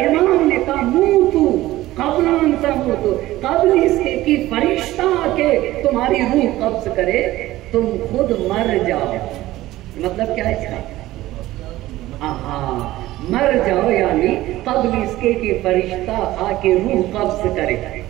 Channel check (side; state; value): left; quieter; 16.3 dB